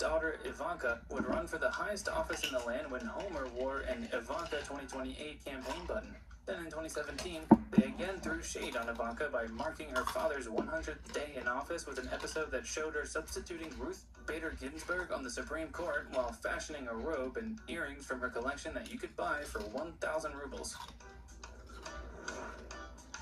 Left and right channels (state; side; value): identical; both; correlation 1.00